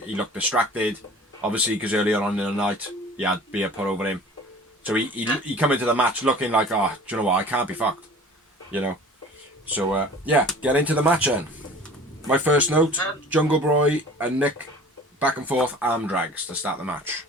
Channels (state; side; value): normal; both; correlation 0.44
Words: distracted. Obviously, because earlier on in the night, he had beer put over him. So he come into the match looking like, oh, do you know what, I can't be fucked. You know. So, yeah, get into the match then. My first note, Jungle Boy and Nick back and forth arm drags to start the match.